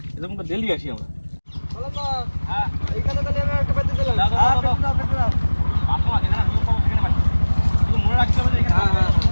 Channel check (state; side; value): inverted; both; correlation -1.00